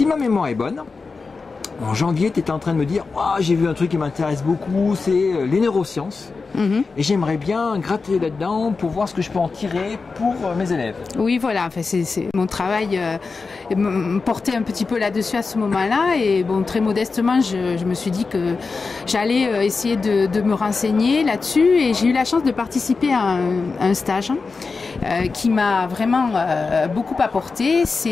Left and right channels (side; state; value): right; quieter; 4.4 dB